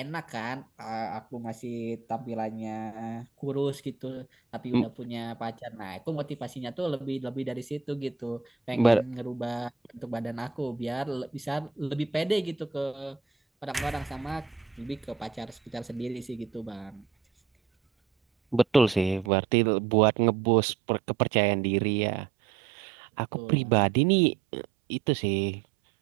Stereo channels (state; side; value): drops out; left; at 19.3 s